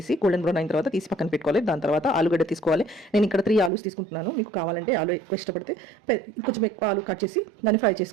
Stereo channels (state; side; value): drops out; left; at 3.7 s